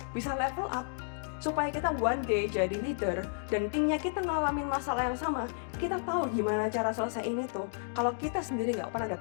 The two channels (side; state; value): right; silent; digital silence